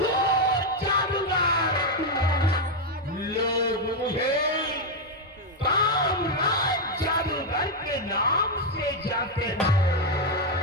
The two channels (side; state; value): both; normal; correlation 0.03